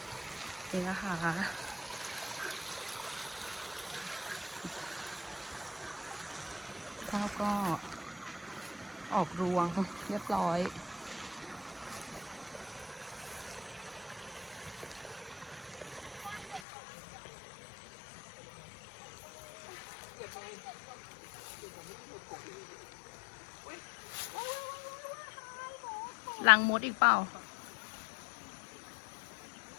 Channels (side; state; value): right; drops out; at 16.6 s